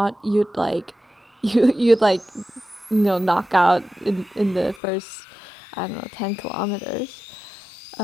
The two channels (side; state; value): right; drops out; at 4.8 s